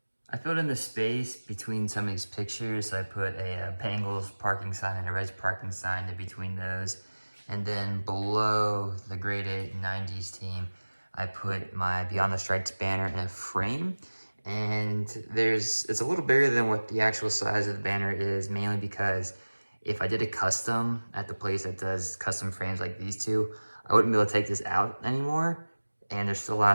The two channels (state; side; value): inverted; both; correlation -1.00